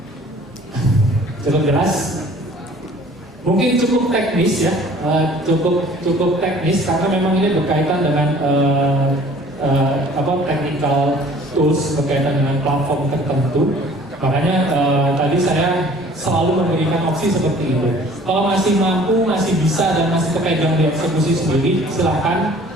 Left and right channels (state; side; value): normal; both; correlation 0.51